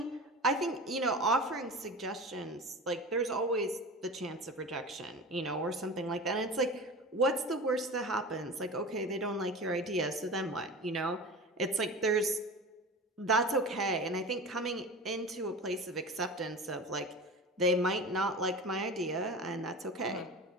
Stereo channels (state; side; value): normal; both; correlation 0.32